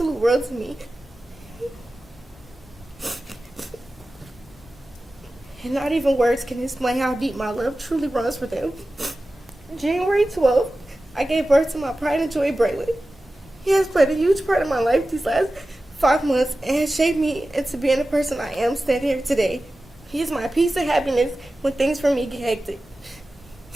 world to me. And not even words can explain how deep my love truly runs for them. January 12th, I gave birth to my pride and joy, Braylon. He has played a huge part in my life these last 5 months and has shaped me into being the person I am standing here today. He is my peace and happiness when things for me get hectic.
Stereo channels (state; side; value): normal; both; correlation 0.95